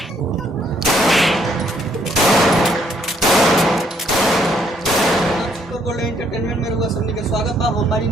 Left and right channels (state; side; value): normal; both; correlation 0.69